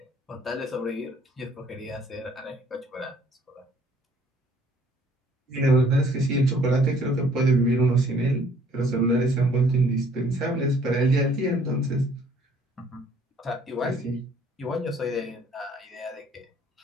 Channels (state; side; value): normal; both; correlation 0.60